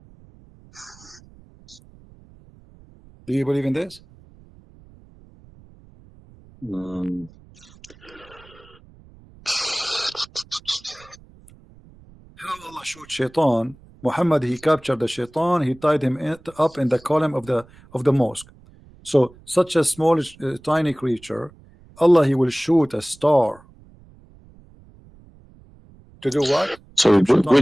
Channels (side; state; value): right; noise; rumble, 25 dB below the sound